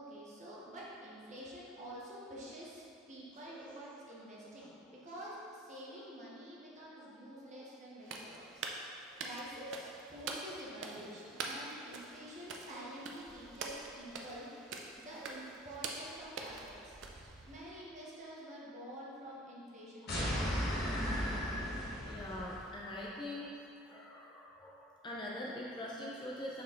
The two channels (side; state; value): both; normal; correlation 0.48